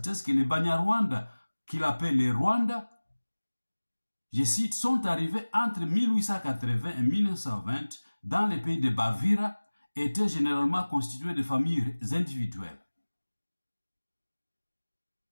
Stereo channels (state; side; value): inverted; both; correlation -1.00